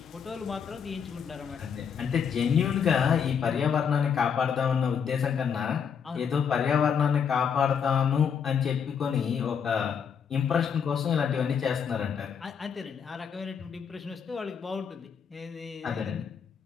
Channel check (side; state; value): right; quieter; 7.1 dB